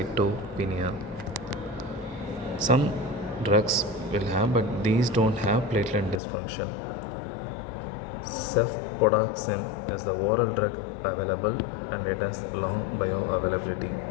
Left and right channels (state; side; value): drops out; right; at 6.2 s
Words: Some drugs will have, but these don't have platelet dysfunction. Cefpodoxime is the oral drug available and it has long bioavailability.